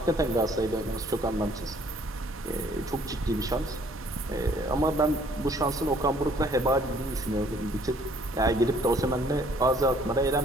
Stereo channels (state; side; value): normal; both; correlation 0.60